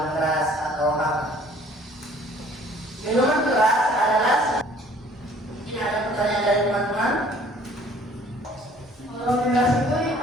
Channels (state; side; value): normal; both; correlation 0.55